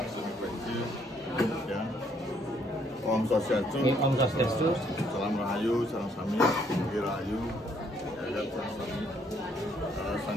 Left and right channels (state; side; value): normal; both; correlation 0.68